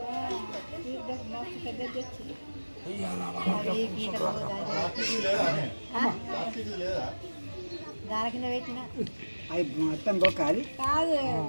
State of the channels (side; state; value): both; inverted; correlation -1.00